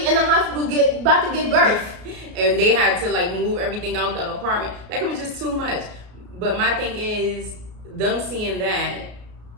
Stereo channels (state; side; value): late; left; 33 ms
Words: in the hospital about to give birth. And they had to like move everything out the apartment. Like it was just too much. But my thing is them seeing that,